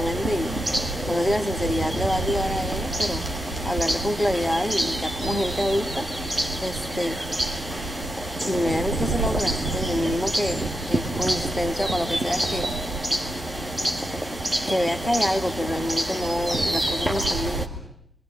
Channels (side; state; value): both; normal; correlation 0.86